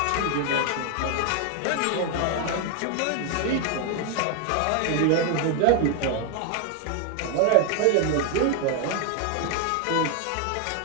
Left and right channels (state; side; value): different; both; correlation 0.01